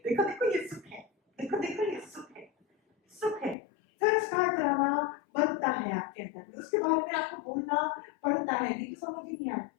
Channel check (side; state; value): right; drops out; at 3.6 s